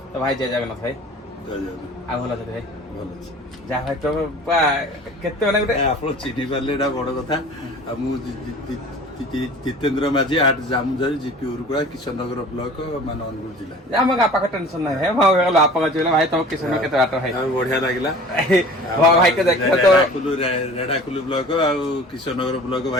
तो भाई जय जगन्नाथ भाई आ भला छै भाई ଭଲ ଅଛି जा भाई तो केते माने गुटे ଆପଣ ଚିହ୍ନି ପାରିଲେ ଏଇଟା ବଡ କଥା ଆଉ ମୁଁ ଜିତେନ୍ଦ୍ର ମାଝୀ ଆଟ ଜାମୁଝାରି ଜିପି ଉରୁକୁଳା କିଶନନଗର ବ୍ଲକ ମାନେ ଅନୁଗୁଳ ଜିଲ୍ଲା ଆମ ପାଖ ଟେନସନ ନାହିଁ ହେ ଭାଇ ଗଲା ଆପଣ କହିଲେ ଭାଇ ତମ କିଶନ କେତେ ବାଟ ଭାଇ ବଢିଆ ଲାଗିଲା ଭାଇ କେ ଦେଖିବ ତ ରେଢାକୁଲୁ ବ୍ଲକ ଆଉ କିଶନନଗର ବ୍ଲକ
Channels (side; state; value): both; normal; correlation 0.43